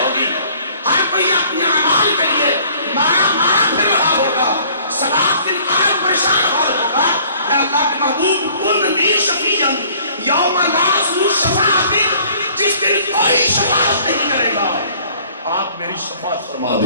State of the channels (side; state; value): both; inverted; correlation -0.55